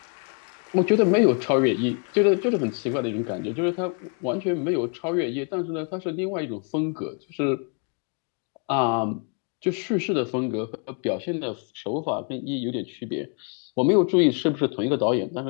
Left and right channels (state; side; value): quieter; right; 38.9 dB